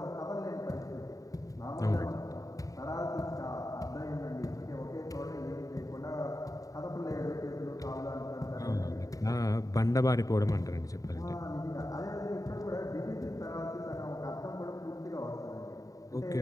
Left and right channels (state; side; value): late; right; 0.16 ms